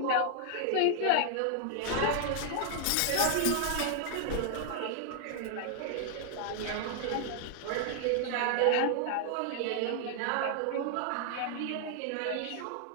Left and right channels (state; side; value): different; both; correlation 0.00